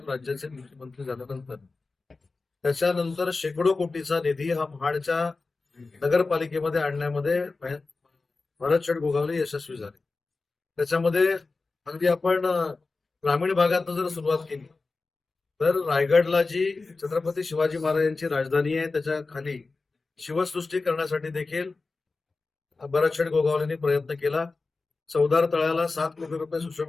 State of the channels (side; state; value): right; quieter; 3.8 dB